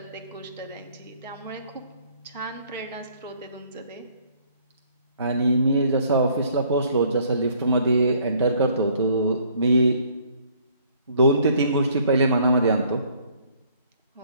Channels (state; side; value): inverted; both; correlation -0.61